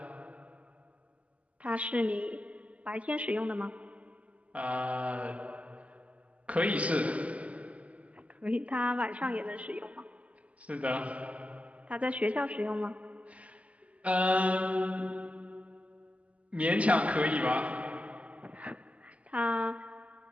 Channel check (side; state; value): left; late; 0.067 ms